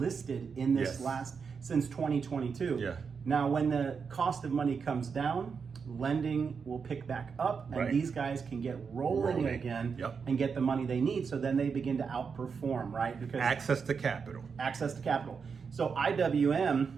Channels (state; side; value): quieter; left; 5.8 dB